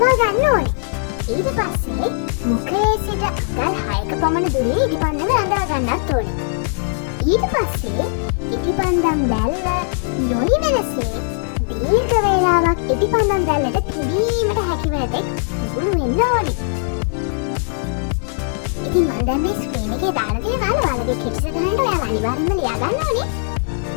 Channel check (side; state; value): right; silent; 66 dB below the other